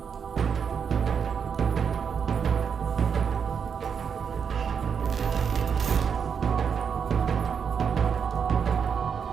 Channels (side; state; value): left; quieter; 6.8 dB